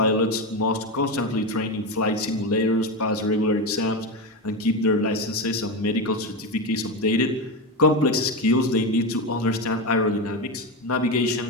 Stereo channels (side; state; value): both; normal; correlation 0.15